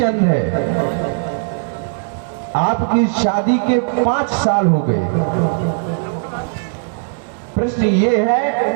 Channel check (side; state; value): left; silent; 62 dB below the other